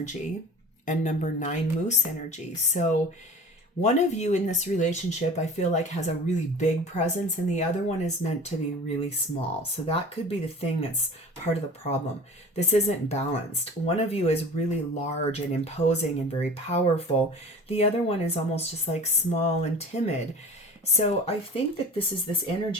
and number 9, moose energy. So one of you in this relationship, I feel like, has a really big presence, and the other one is meant to be really small. So that could be the thing that's part of the problem. This isn't balanced. One of you is really large and imposing and very powerful. The other one is almost just like small and timid. So I think that this is this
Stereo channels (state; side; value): normal; both; correlation 0.40